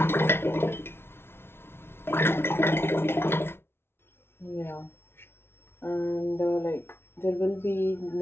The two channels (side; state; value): right; late; 0.12 ms